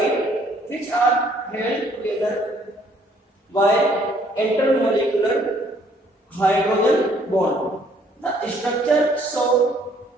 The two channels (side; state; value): both; normal; correlation 0.63